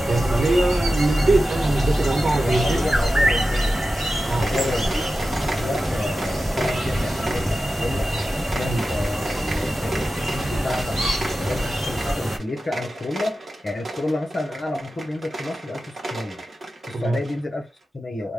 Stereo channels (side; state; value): both; normal; correlation 0.93